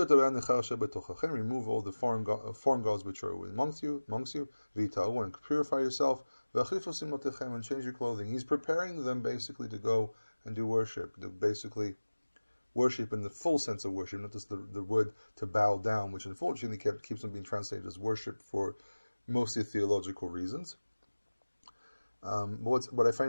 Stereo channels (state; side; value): inverted; both; correlation -1.00